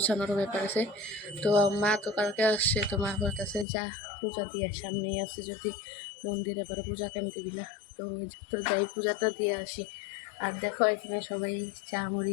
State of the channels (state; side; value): drops out; right; at 3.7 s